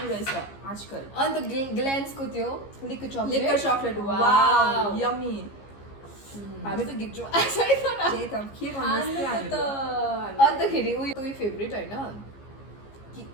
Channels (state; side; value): late; right; 15 ms